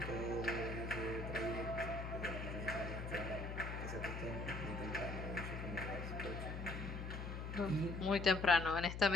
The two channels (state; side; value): noise; left; hum, 5 dB below the sound